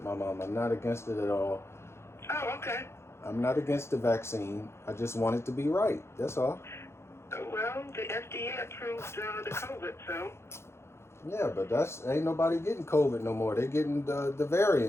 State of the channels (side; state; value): right; late; 0.13 ms